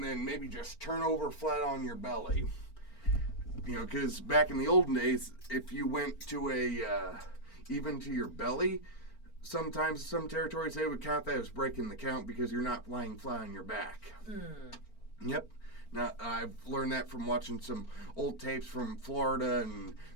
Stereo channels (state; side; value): late; right; 4.4 ms